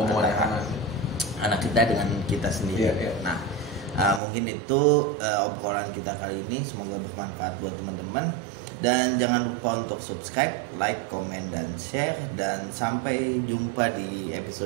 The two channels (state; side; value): drops out; left; at 4.2 s